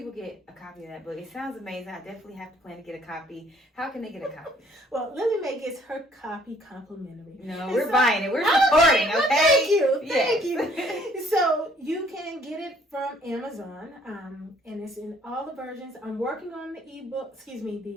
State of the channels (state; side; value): normal; both; correlation 0.61